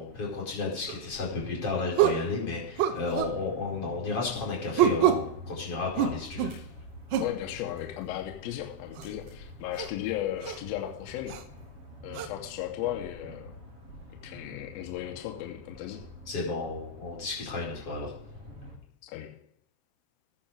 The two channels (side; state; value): right; late; 7.3 ms